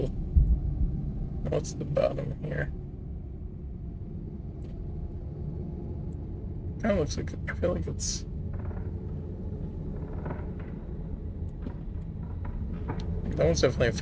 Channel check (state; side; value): identical; both; correlation 1.00